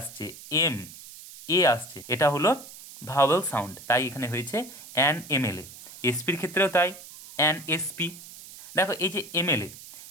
এম এ আসছে, এটা হলো ভাওয়েল সাউন্ড, তাই এখানে হয়েছে অ্যান এমএলএ। এসপির ক্ষেত্রেও তাই, অ্যান এসপি। দেখো এই যে এমএলএ,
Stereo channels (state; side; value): noise; right; hiss, 16 dB below the sound